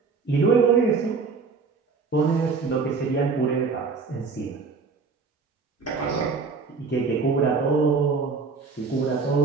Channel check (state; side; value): quieter; left; 4.8 dB